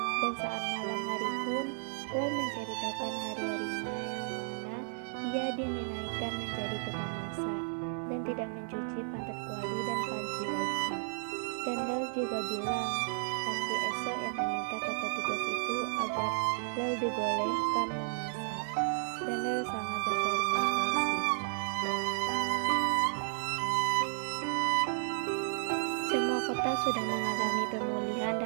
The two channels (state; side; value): silent; left; digital silence